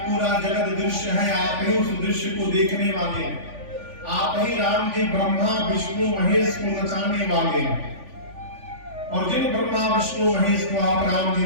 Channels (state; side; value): late; left; 3.5 ms